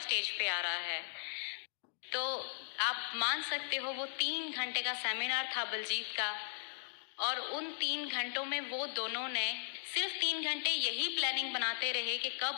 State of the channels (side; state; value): right; silent; digital silence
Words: पे आ रहा है। तो आप मान सकते हो वो 3 घंटे का सेमिनार था बलजीत का, और उन 3 घंटों में वो दोनों ने सिर्फ 3 घंटे यही प्लानिंग बनाते रहे कि